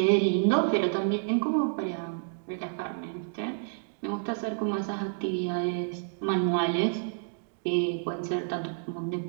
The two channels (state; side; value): silent; left; digital silence